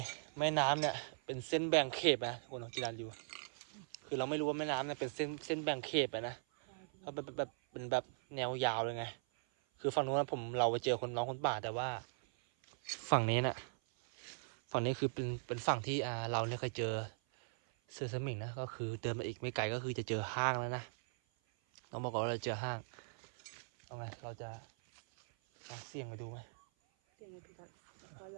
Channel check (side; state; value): left; silent; 51 dB below the other